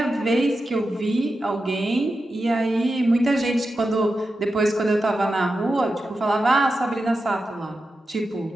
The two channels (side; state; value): both; normal; correlation 0.90